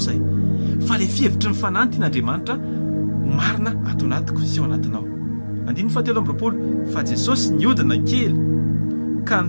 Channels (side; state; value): both; inverted; correlation -1.00